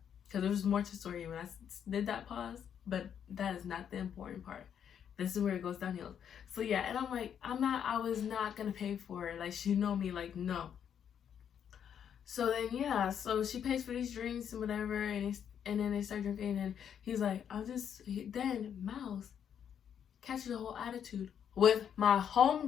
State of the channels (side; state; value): right; quieter; 8.6 dB